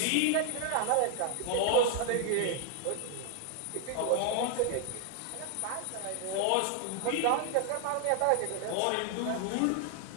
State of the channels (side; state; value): both; different; correlation 0.00